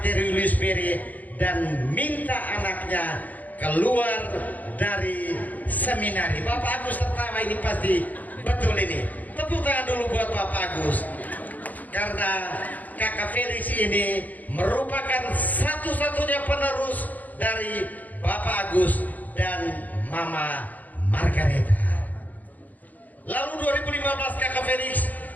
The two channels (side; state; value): right; late; 0.080 ms